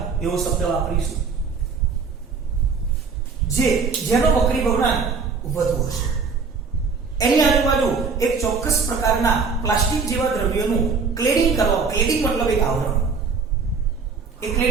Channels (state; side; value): quieter; left; 5.1 dB